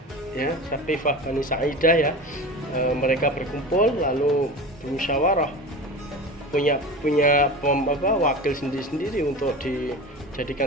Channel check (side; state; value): both; normal; correlation 0.31